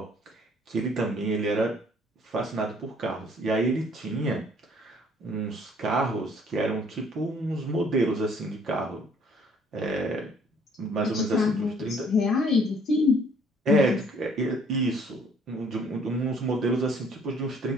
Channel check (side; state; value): both; normal; correlation 0.59